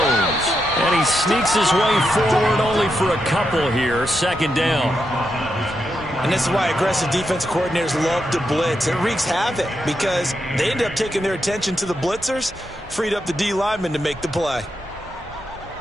And he sneaks his way forward only for a couple here. Second down. And this is why aggressive defense coordinators love to blitz. It wreaks havoc because they end up taking their attention to the blitzers, freed up the D lineman to make the play.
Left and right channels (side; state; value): both; normal; correlation 0.84